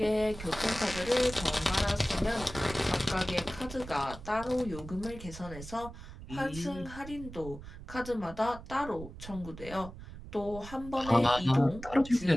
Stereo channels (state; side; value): noise; right; rumble, 13 dB below the sound